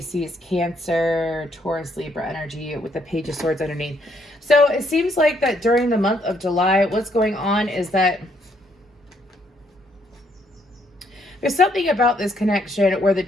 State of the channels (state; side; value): normal; both; correlation 0.71